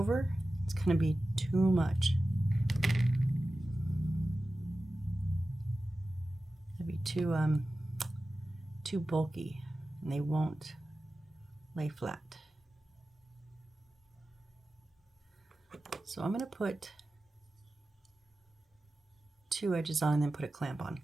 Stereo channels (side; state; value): both; normal; correlation 0.95